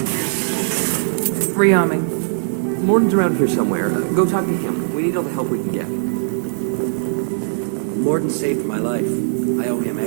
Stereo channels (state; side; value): silent; left; digital silence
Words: Rearming. Morden's around here somewhere. Go talk to him. We need all the help we can get. Morden saved my life. I owe him